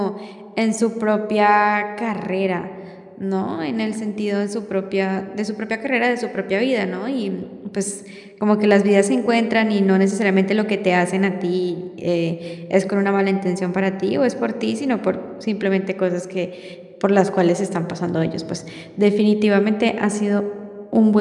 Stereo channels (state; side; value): identical; both; correlation 1.00